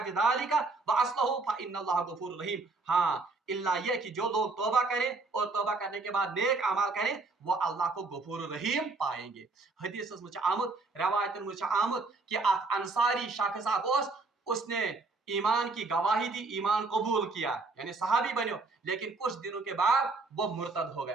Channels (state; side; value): quieter; left; 3.7 dB